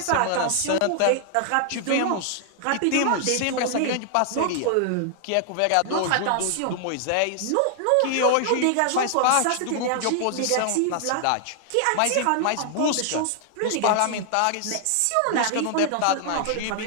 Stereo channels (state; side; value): different; both; correlation 0.00